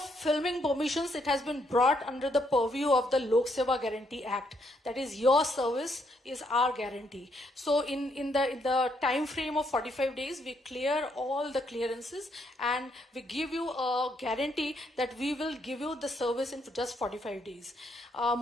permissions, it has been brought under the purview of the Lok Seva Guarantee Act. That is, your service is our guarantee. So in the time frame of 45 days, we clear all the clearances, and we give you a guarantee that we will give you the service in just 45 days.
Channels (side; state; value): both; normal; correlation 0.74